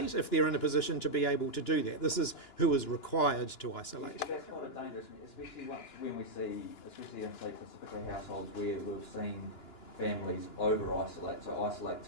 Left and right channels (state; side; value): late; right; 2.9 ms